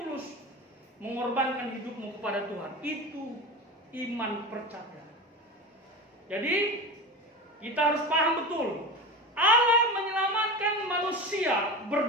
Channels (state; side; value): normal; both; correlation 0.27